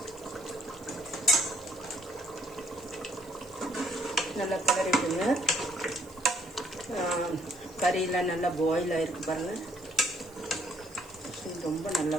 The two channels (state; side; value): noise; right; hiss, 24 dB below the sound